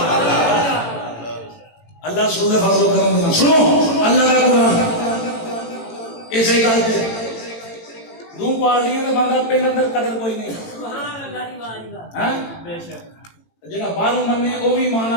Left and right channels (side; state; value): right; late; 18 ms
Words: اللہ سننے فضل و کرم دینا سنو اللہ کا قرآن اسے گل پہ دو پارٹیاں کا بندہ پہلے اندر قدر کوئی نہیں جہاں باہروں منے وہ بھی ایمان